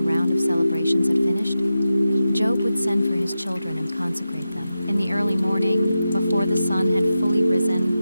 round of celebrations had finished, Job would send for his children and consecrate them. In the early morning, before the sun had fully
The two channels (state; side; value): inverted; both; correlation -0.91